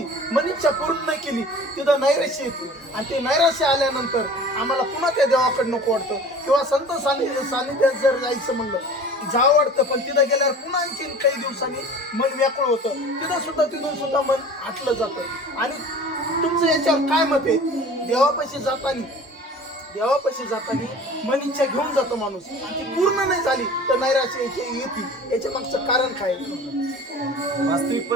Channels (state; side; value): normal; both; correlation 0.42